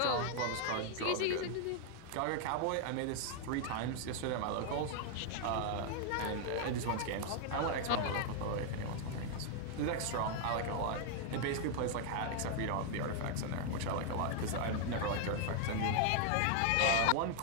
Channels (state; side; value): different; both; correlation 0.00